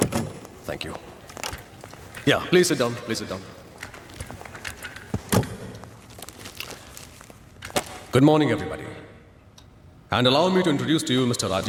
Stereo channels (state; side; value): identical; both; correlation 1.00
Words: Thank you. Yeah please sit down, please sit down. Good morning everybody, and allow me to introduce to you mister